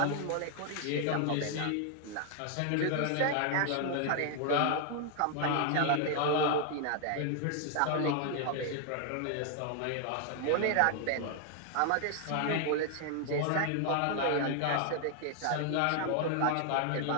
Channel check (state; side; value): different; both; correlation 0.00